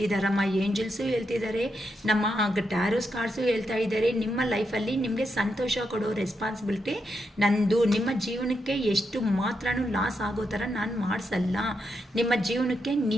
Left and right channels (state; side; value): normal; both; correlation 0.83